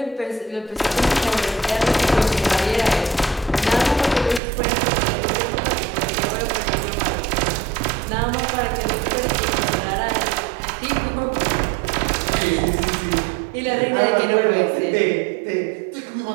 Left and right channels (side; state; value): left; drops out; at 4.4 s